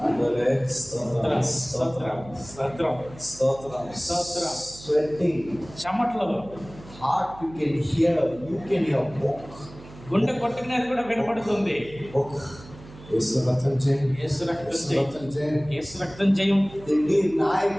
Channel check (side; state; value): right; noise; hum, 19 dB below the sound